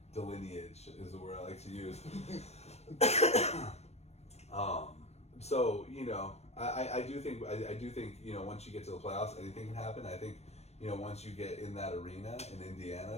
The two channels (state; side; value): late; right; 0.31 ms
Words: Delineage is the word I like to use. So I do think once you get to the playoffs, anything can happen. I think once you get in that arena in